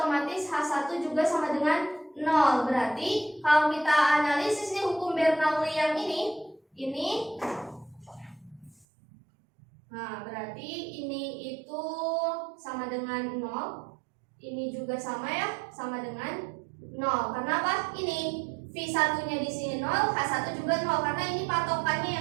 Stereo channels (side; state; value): left; drops out; at 8.8 s